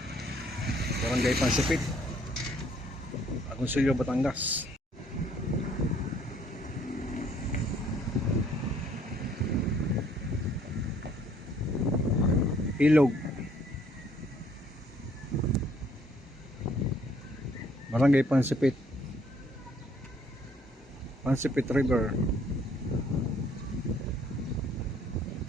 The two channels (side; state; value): both; normal; correlation 0.63